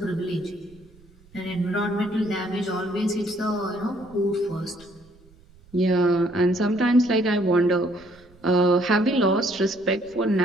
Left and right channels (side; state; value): right; noise; rumble, 27 dB below the sound